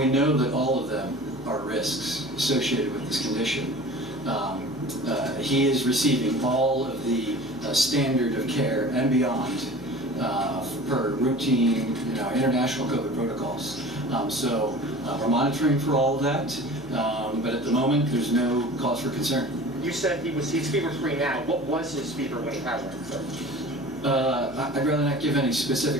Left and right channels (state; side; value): noise; left; hum, 21 dB below the sound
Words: know that all of them are risks associated with this condition. He is receiving all of the standard of care and beyond per routine, international COVID protocols. So we're monitoring for all of that, but at the moment there's no cause for concern. You said he's fever-free now. What was his fever when he had one, sir? I'd rather not give any